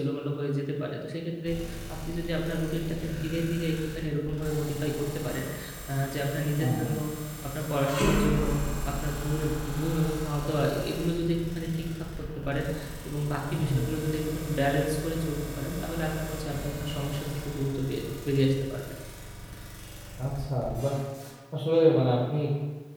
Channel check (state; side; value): identical; both; correlation 1.00